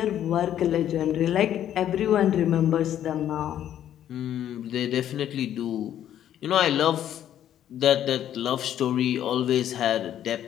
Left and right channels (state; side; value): quieter; right; 10.9 dB